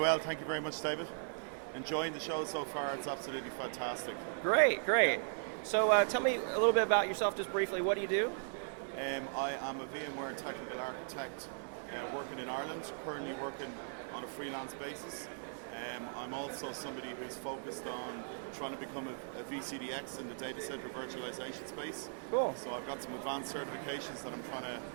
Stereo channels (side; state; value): left; silent; digital silence